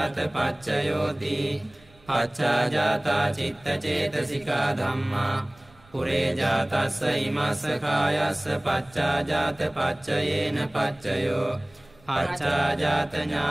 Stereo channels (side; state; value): right; noise; rumble, 28 dB below the sound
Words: පච්චයෝති පච්චාජාතා චිත්තචේතසිකා ධම්මා පුරේජාතස්ස ඉමස්ස කායස්ස පච්චාජාත පච්චයේන පච්චයෝ පච්චාජාත